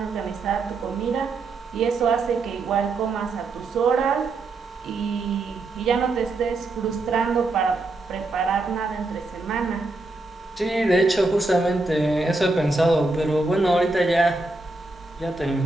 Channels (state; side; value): quieter; left; 3.2 dB